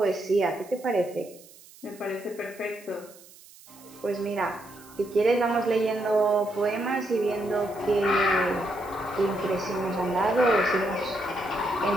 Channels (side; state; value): right; noise; hiss, 22 dB below the sound